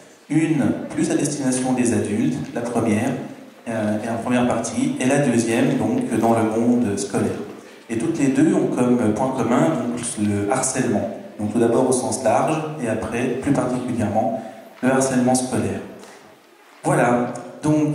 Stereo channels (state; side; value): identical; both; correlation 1.00